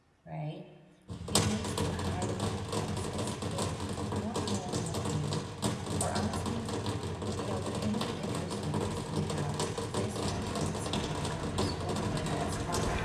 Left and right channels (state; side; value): identical; both; correlation 1.00